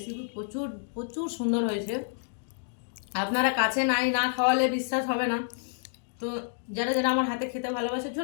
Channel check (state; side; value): silent; right; digital silence